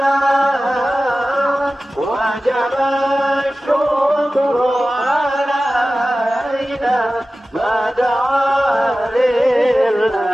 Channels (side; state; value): both; normal; correlation 0.96